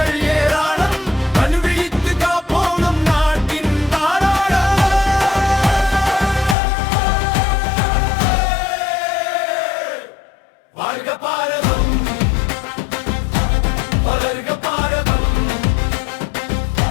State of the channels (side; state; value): right; drops out; at 6.6 s